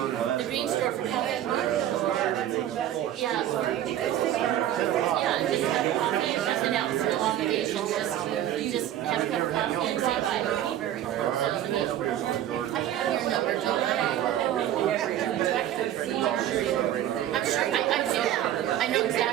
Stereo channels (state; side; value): quieter; left; 11.9 dB